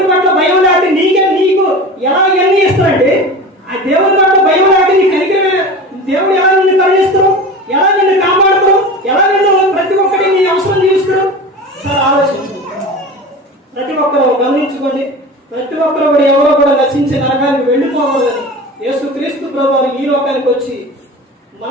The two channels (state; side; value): normal; both; correlation 0.32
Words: పట్ల భయం లేకపోతే నీకు ఎలా ఎన్ని ఇస్తాడండి? ఆ దేవుని పట్ల భయం లేకపోతే నీ కనికరమే. దేవుడు ఎలా నిన్ను కరుణిస్తాడు, ఎలా నిన్ను కాపాడుతాడు, ఎలా నిన్ను ప్రతి ఒక్కటి నీ అవసరం తీరుస్తాడు. సార్ ఆలోచించు. ప్రతి ఒక్కరు గమనించుకోండి. ప్రతి ఒక్కరు కూడా ఎవరో కూడా నశించే నరకానికి వెళ్ళిపోకూడదని యేసుక్రీస్తు ప్రభువు ఈ లోకానికి వచ్చి